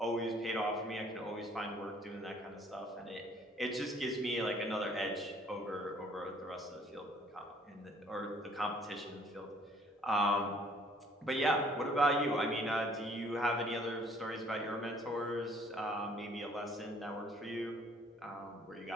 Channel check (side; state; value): both; normal; correlation 0.59